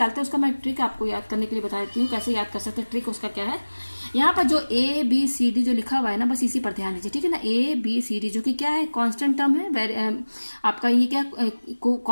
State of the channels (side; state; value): both; inverted; correlation -1.00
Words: हैं उसका मैं ट्रिक आपको याद करने के लिए बता देती हूँ, कैसे याद कर सकते हैं। ट्रिक उसका क्या है, यहाँ पर जो ABCD जो लिखा हुआ है ना, बस इसी पर ध्यान दीजिए, ठीक है ना। ABCD जो कि क्या है, कांस्टेंट टर्म है, आपका ये क्या